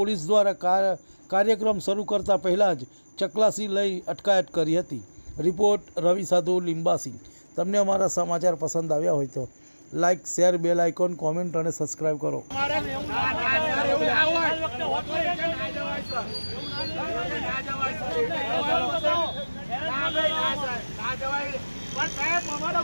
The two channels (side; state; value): both; inverted; correlation -1.00